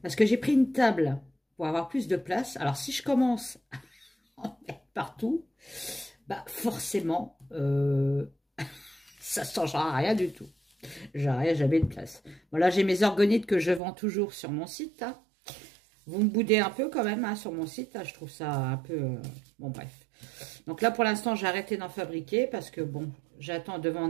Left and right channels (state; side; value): drops out; left; at 13.8 s